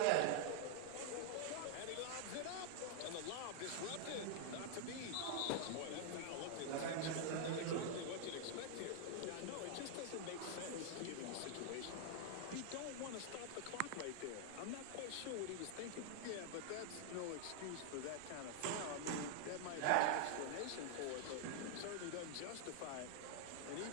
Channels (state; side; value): different; both; correlation 0.00